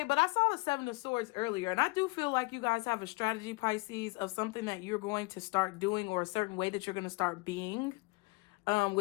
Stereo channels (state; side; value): quieter; right; 25.9 dB